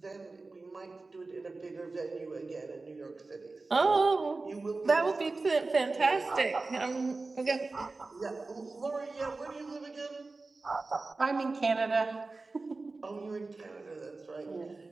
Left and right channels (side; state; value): left; quieter; 3.6 dB